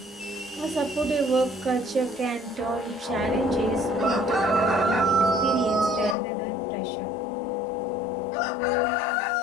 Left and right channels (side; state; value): right; drops out; at 6.2 s